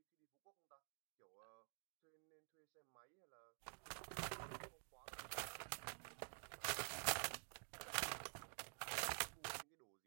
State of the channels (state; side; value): silent; left; digital silence